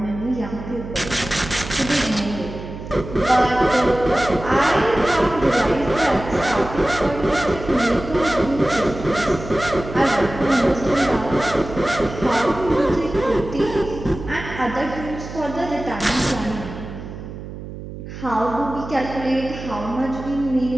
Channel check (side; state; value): right; noise; hum, 11 dB below the sound